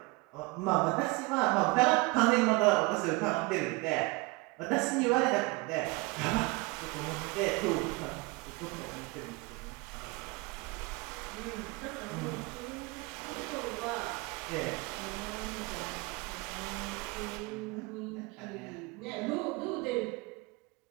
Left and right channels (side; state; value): left; quieter; 25.3 dB